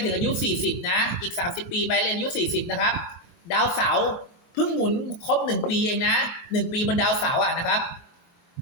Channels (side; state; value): right; late; 23 ms